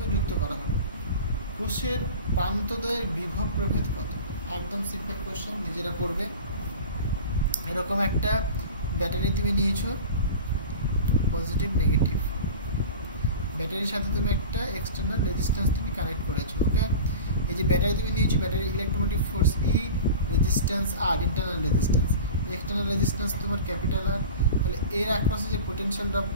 যুক্ত করা হলো। কোষের প্রান্তদ্বয়ের বিভব প্রভেদ কত? একদম সিম্পল কোশ্চেন, নিজেরা করবে। এরকম একটা ব্যাটারি তুমি নিয়েছো, পজিটিভ নেগেটিভ, ব্যাটারির সাথে তুমি একটা এক্সটার্নাল রেজিস্ট্যান্স তুমি কানেক্ট করেছো। ওকে, এই যে ব্যাটারি তুমি নিয়েছো, ব্যাটারি ইলেকট্রোমোটিভ ফোর্স ই, রেজিস্ট্যান্স আর, ইন্টারনাল রেজিস্ট্যান্স, এক্সটার্নাল রেজিস্ট্যান্স তোমার ক্যাপিটাল আর, তাহলে এর অ্যাক্রসে যে পোটেনশিয়াল ড্রপ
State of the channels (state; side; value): inverted; both; correlation -0.34